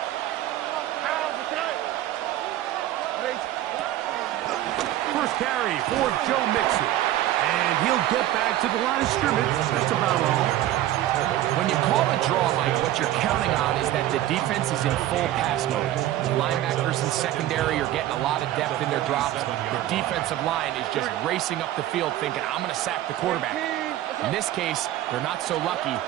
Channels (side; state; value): left; quieter; 13.7 dB